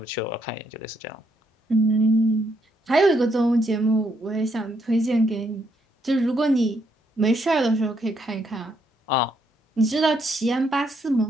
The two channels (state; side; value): normal; both; correlation 0.74